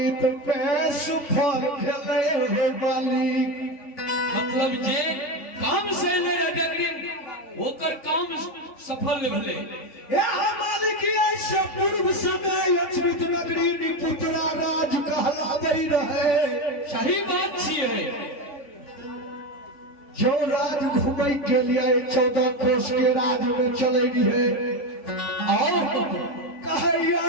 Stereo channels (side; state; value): right; late; 3.5 ms